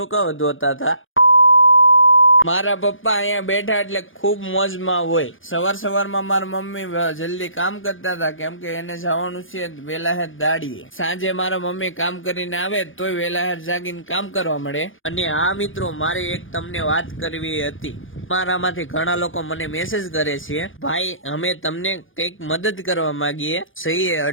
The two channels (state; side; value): late; right; 0.58 ms